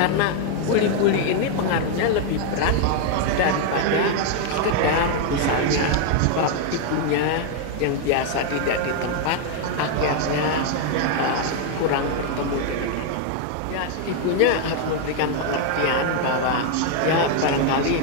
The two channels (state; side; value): different; both; correlation 0.00